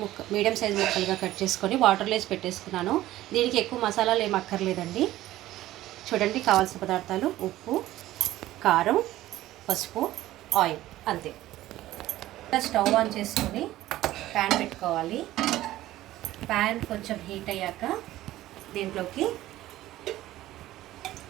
సైజ్ ముక్కలుగా కట్ చేసుకొని వాటర్లో వేసి పెట్టేసుకున్నాను. దీనికి ఎక్కువ మసాలాలు ఏం అక్కర్లేదండి. చూడండి, కావాల్సిన పదార్థాలు: ఉప్పు, కారం, పసుపు, ఆయిల్, అంతే. స్టవ్ ఆన్ చేసుకొని ప్యాన్ పెట్టుకోవాలి. ప్యాన్ కొంచెం హీట్ అయ్యాక దీంట్లోకి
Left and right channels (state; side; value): quieter; left; 15.2 dB